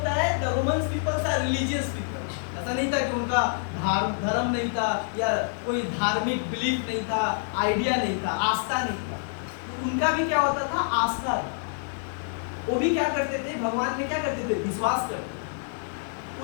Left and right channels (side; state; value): right; silent; digital silence